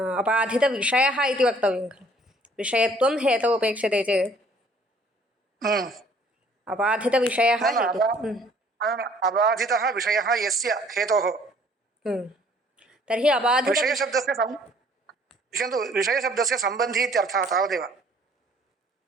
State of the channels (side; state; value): both; normal; correlation 0.58